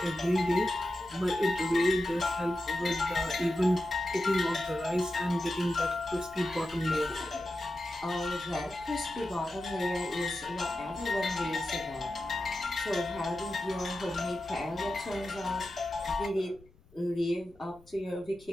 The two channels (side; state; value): left; noise; rumble, 26 dB below the sound